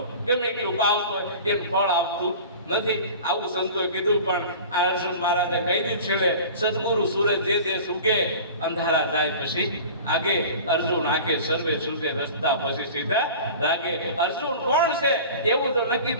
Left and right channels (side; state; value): both; inverted; correlation -0.39